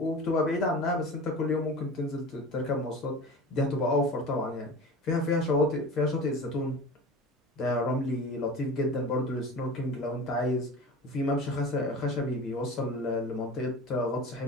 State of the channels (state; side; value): normal; both; correlation 0.35